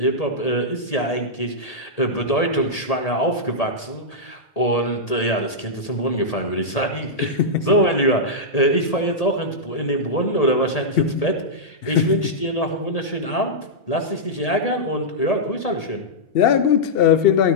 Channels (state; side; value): late; right; 1.8 ms